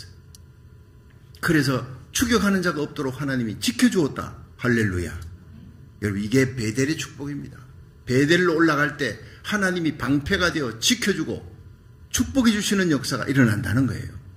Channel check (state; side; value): identical; both; correlation 1.00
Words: 그래서 추격하는 자가 없도록 하나님이 지켜주었다. 할렐루야. 여러분 이게 베델의 축복입니다. 베델로 올라갈 때 하나님이 방패가 되어 지켜주고 축복해 주시는 역사가 일어난다는 거예요.